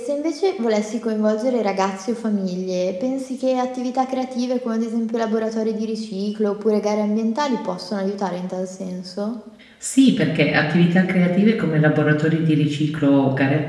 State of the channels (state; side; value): identical; both; correlation 1.00